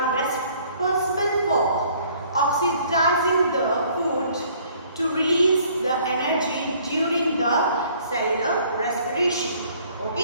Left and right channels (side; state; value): both; inverted; correlation -0.59